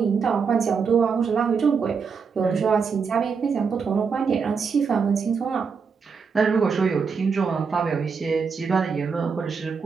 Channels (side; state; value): left; quieter; 5.7 dB